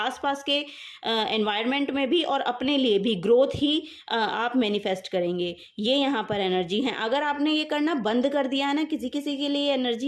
के एनवायरनमेंट में भी और अपने लिए भी ग्रोथ ही आप मैनिफेस्ट करेंगे। ये यहाँ पर एनर्जी है। अगर आपने ये करना बंद कर दिया है ना, किसी किसी के लिए एनर्जी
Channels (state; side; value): identical; both; correlation 1.00